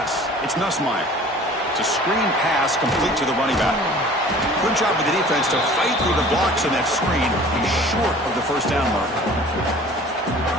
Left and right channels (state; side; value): normal; both; correlation 0.47